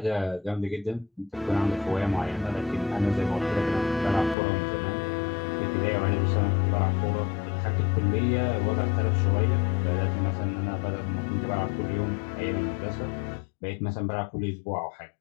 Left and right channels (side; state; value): right; drops out; at 4.4 s